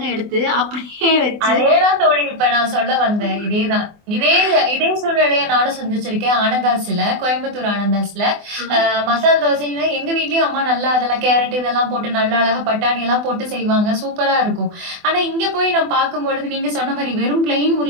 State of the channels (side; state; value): left; late; 24 ms